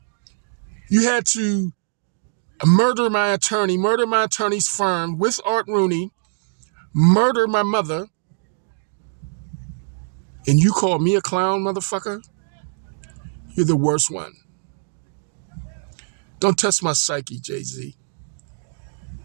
You had to murder my attorney's firm with Art Rooney, murder my mother, and you call me a clown, motherfucker? You're the worst one. Don't test my psyche, Jay-Z,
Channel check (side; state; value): left; silent; digital silence